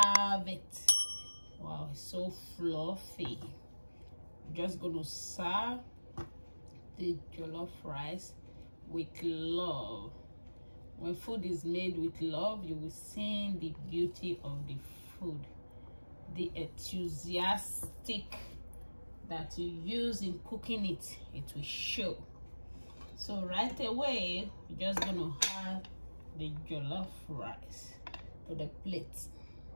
it. Wow, it's so fluffy. Just gonna serve the jollof rice with love. When food is made with love, you will see the beauty of the food, the enthusiastic that you use in cooking it. It will show. So right away, we're just gonna add the jollof rice to the plate.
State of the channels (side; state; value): both; inverted; correlation -1.00